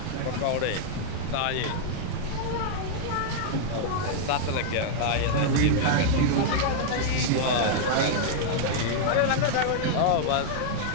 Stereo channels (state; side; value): different; both; correlation -0.01